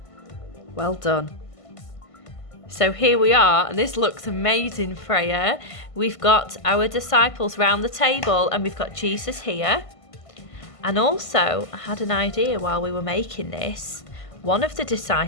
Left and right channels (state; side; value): late; right; 1.5 ms